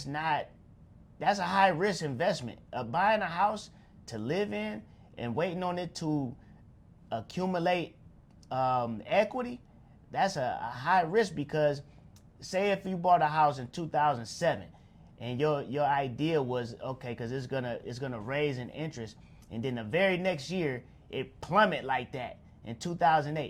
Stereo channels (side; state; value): both; identical; correlation 1.00